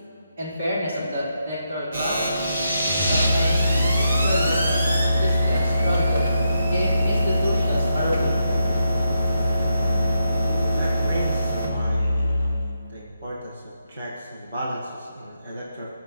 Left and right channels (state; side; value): inverted; both; correlation -0.82